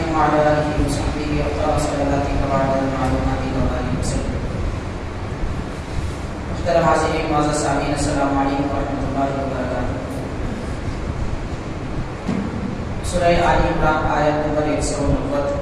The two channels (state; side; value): identical; both; correlation 1.00